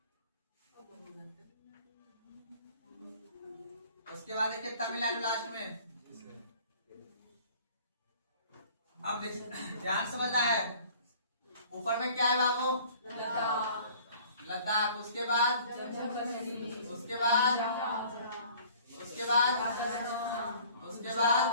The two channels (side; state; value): both; inverted; correlation -0.51